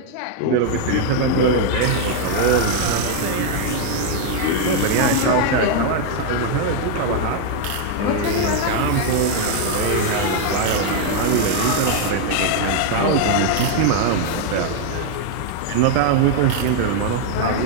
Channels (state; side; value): different; both; correlation 0.00